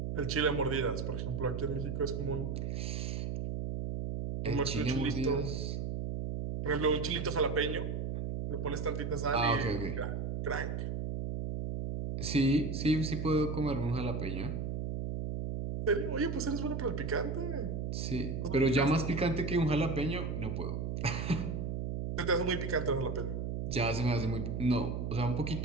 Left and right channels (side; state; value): right; noise; hum, 2 dB below the sound